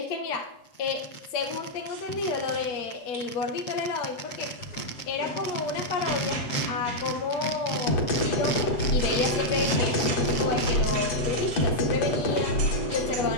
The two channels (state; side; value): late; right; 7.7 ms